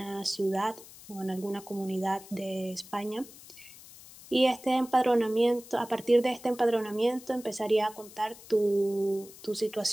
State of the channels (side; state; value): left; noise; hiss, 19 dB below the sound